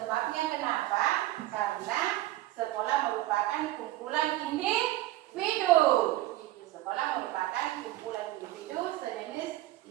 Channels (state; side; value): quieter; left; 16.2 dB